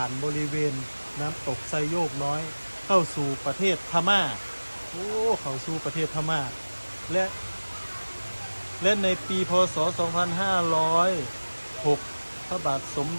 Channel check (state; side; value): inverted; both; correlation -1.00